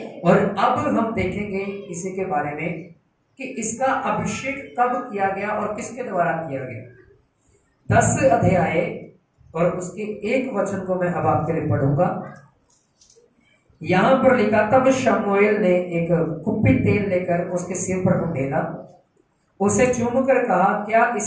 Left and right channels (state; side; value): identical; both; correlation 1.00